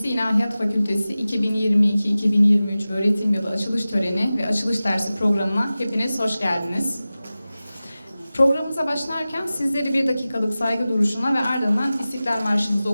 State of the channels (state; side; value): inverted; both; correlation -0.96